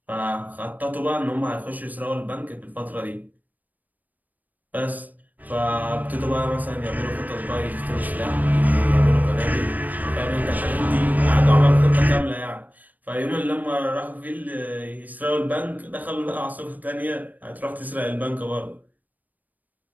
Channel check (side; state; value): left; late; 0.082 ms